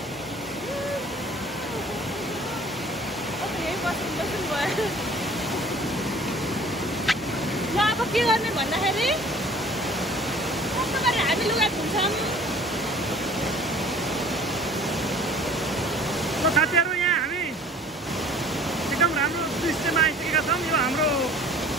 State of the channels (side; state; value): both; normal; correlation 0.49